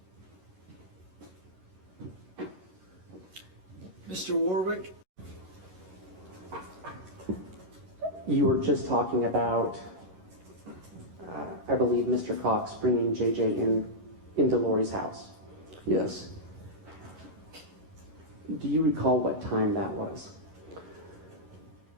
Mr. Warwick? You were just talking about, I believe, Mr. Cox bringing JJ into Lori's house. Yes. Do you recall what time that was?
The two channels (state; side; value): late; left; 11 ms